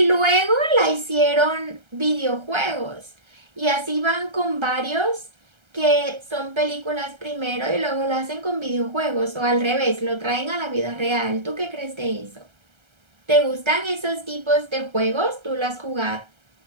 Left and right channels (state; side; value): late; left; 1.3 ms